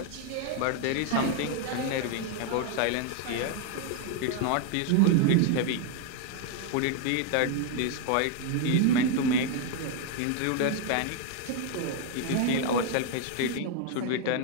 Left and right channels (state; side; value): different; both; correlation 0.00